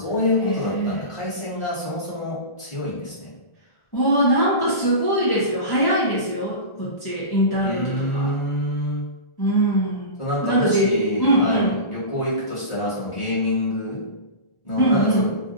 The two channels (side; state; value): right; late; 1.4 ms